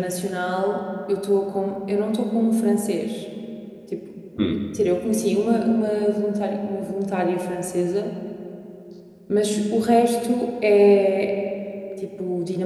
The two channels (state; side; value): identical; both; correlation 1.00